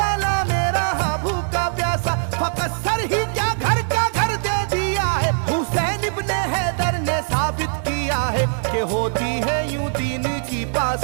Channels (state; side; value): silent; left; digital silence